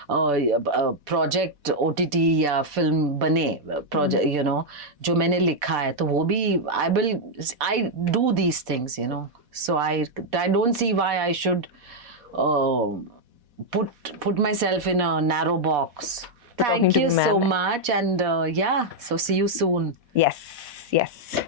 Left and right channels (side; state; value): left; late; 4.1 ms